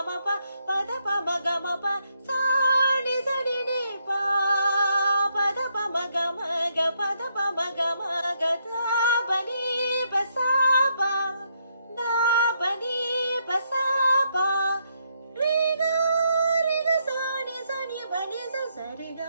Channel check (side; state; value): both; inverted; correlation -0.75